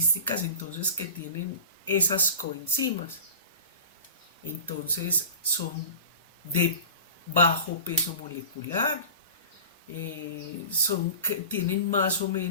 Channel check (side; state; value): both; inverted; correlation -0.37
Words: entonces que tienen esas coenzimas? Entonces son de bajo peso molecular, tienen más o